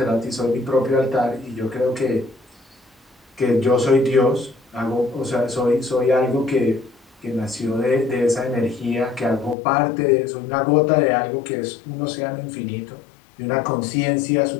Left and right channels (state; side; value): drops out; right; at 9.6 s